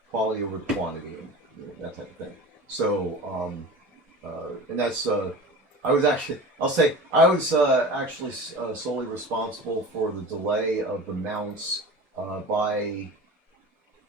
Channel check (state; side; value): normal; both; correlation 0.35